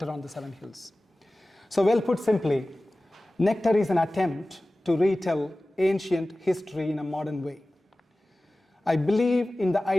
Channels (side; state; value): both; normal; correlation 0.97